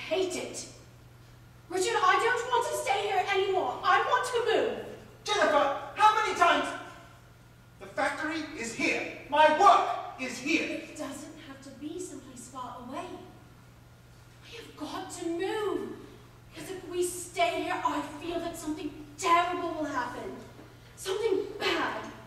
it. Richard, I don't want to stay here anymore. I want to move. Jennifer, how many times? The factory is here. My work is here. It doesn't have to be someplace far away. I have got to move. Because if we stay here, I feel that something terrible will happen. Something bad.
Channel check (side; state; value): both; identical; correlation 1.00